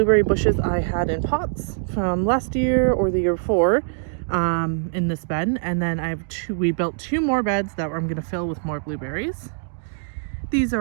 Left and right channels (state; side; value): silent; left; digital silence